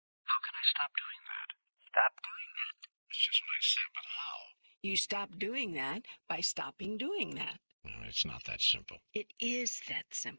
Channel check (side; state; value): both; inverted; correlation -1.00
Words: How can I stop doing that? Stop doing that. That's just what I said, but how? You stop doing that by stopping doing that. Well, it's not that simple. It is that